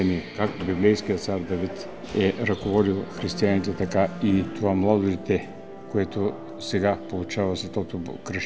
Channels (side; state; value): both; identical; correlation 1.00